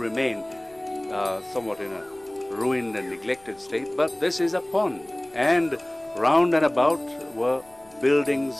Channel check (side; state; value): left; noise; rumble, 30 dB below the sound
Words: somewhat in a ruined and neglected state. But this is a pond, and round and about were